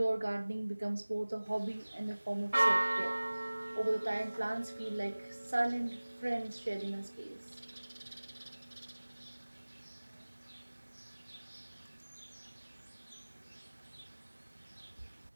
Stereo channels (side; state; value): both; inverted; correlation -1.00